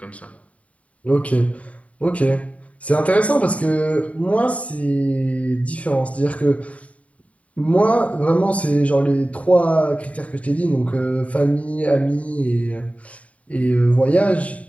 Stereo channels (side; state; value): right; late; 0.067 ms